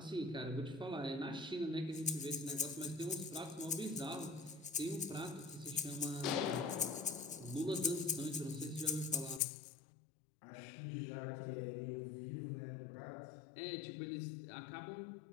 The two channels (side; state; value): right; drops out; at 9.4 s